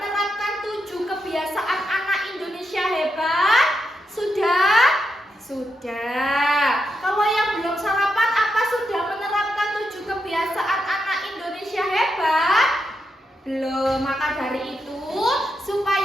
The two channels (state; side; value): normal; both; correlation 0.84